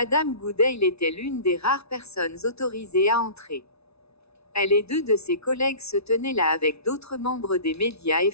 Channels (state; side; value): late; right; 0.79 ms